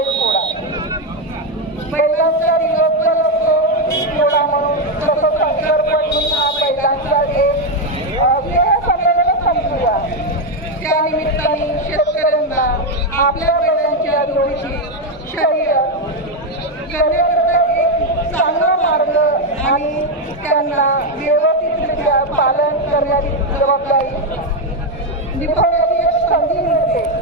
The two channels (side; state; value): both; normal; correlation 0.05